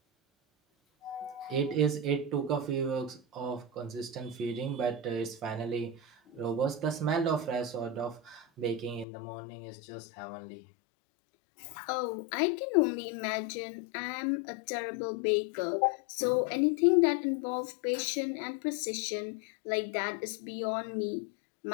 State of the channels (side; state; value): right; drops out; at 9.1 s